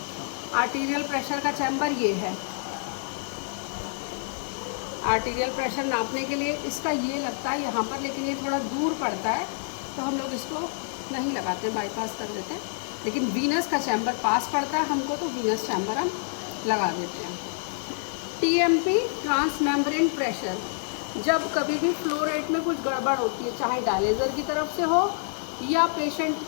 Arterial pressure का चैम्बर ये है। आर्टीरियल प्रेशर नापने के लिए इसका ये लगता है यहाँ पर, लेकिन ये थोड़ा दूर पड़ता है, तो हम लोग इसको नहीं लगाते, बाईपास कर देते हैं। लेकिन वीनस का चैम्बर पास पड़ता है हमको, तो वीनस चैम्बर हम लगा देते हैं। TMP, transmembrane pressure. जब कभी भी फ्लो रेट में कुछ गड़बड़ होती है, चाहे डायलिजर की तरफ से हो, या पेशेंट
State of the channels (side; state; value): right; silent; digital silence